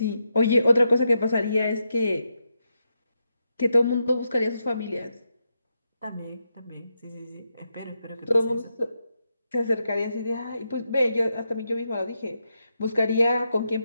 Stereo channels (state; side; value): inverted; both; correlation -0.84